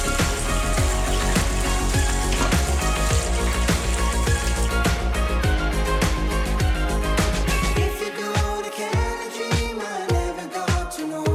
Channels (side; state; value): both; identical; correlation 1.00